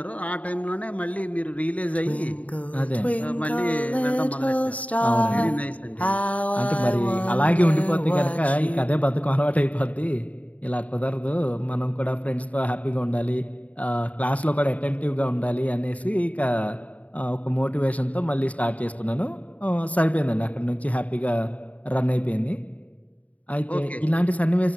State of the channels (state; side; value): late; right; 0.069 ms